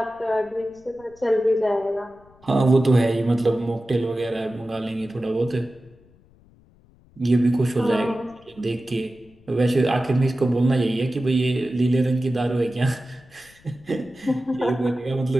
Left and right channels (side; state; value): left; noise; rumble, 28 dB below the sound